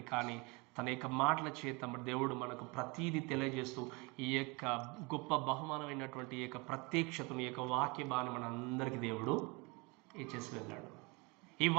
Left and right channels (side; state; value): left; quieter; 27.6 dB